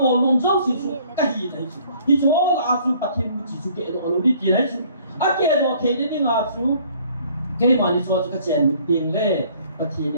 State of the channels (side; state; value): both; inverted; correlation -0.58